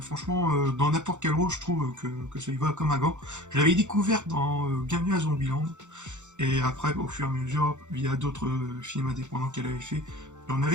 Franchement, dans n'importe quel rôle, je trouve que ça lui va comme un gant. Je l'avais découverte dans Bienvenue à Zombieland. Et après, au fur et à mesure, via d'autres films indépendants qu'elle avait fait. Il y en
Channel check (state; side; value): late; left; 0.84 ms